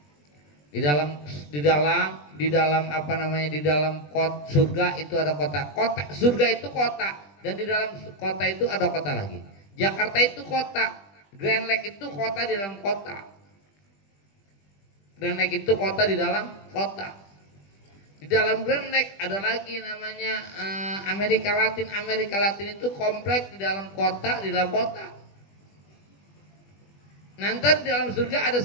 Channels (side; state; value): right; late; 20 ms